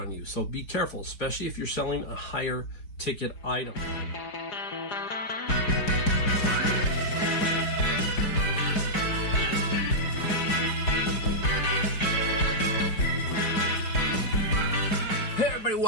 you. So be careful, especially if you're selling a higher ticket item.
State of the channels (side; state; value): right; late; 4.8 ms